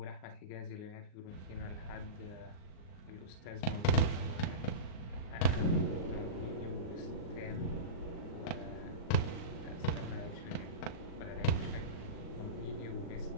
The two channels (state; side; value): late; right; 39 ms